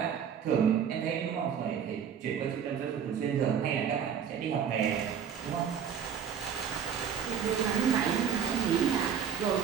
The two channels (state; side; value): quieter; left; 7.8 dB